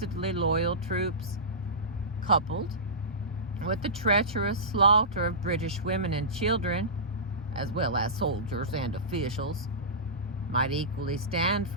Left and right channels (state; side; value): normal; both; correlation -0.19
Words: loyal troops, coupled with the treacherous slaughter of British women and children, as well as soldiers and officials, might equally stand